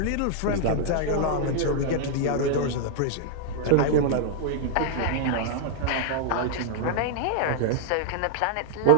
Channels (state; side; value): different; both; correlation -0.01